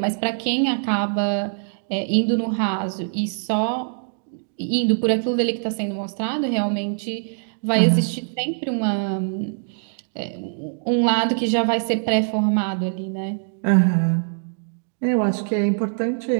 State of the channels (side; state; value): left; silent; digital silence